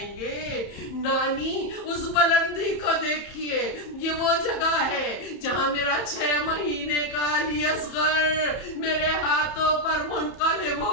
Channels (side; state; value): right; late; 31 ms